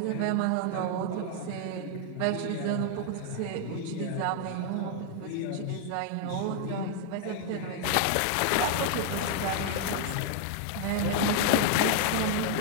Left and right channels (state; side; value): different; both; correlation 0.00